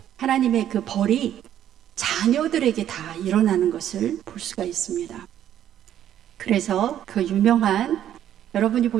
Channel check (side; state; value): left; quieter; 10.9 dB